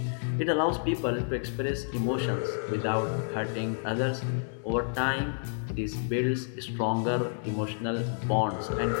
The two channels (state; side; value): silent; right; digital silence